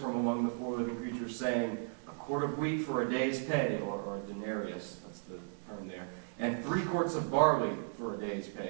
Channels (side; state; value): left; silent; digital silence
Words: among the four living creatures saying, "A quart of wheat for a day's pay," or a denarius, that's the term there, "and 3 quarts of barley for a day's